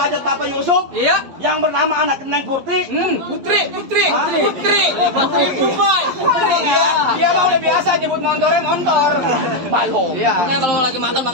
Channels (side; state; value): left; late; 11 ms